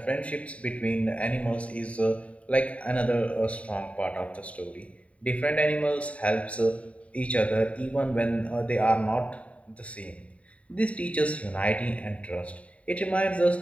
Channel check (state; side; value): late; right; 0.065 ms